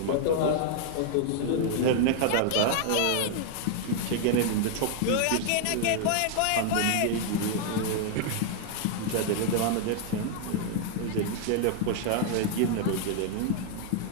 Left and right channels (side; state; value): both; different; correlation 0.00